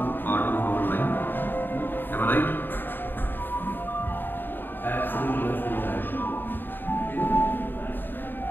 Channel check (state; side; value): late; right; 0.094 ms